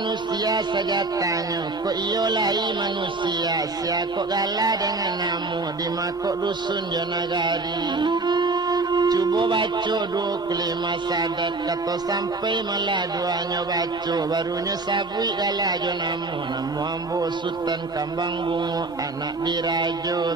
sejatanya kok iyo lai manusia sia kok gala dengan namu di makok dusun jonagari. Cuba baca 25 sadat kata sampai malah duanya baca barunya sabui gala jonamu namu ambo Sutan kambang bunga anak dirajo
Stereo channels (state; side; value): quieter; left; 3.4 dB